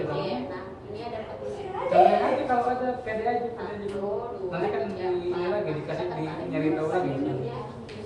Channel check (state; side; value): identical; both; correlation 1.00